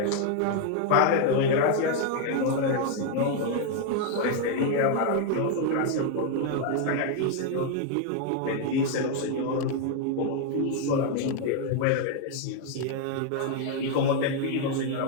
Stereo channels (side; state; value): both; different; correlation 0.01